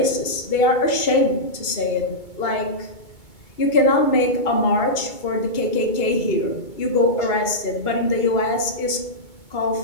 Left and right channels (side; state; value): right; late; 2.2 ms